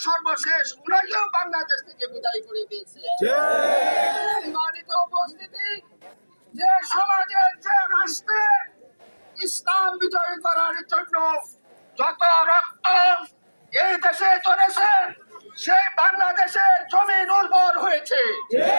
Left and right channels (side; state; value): both; inverted; correlation -1.00